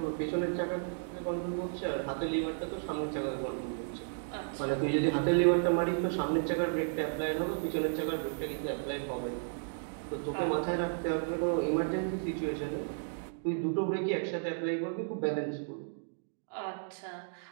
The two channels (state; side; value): silent; left; digital silence